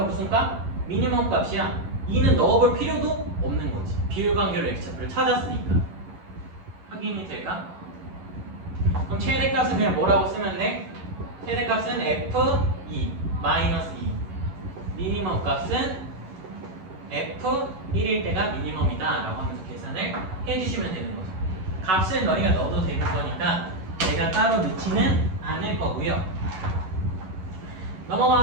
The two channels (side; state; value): left; late; 11 ms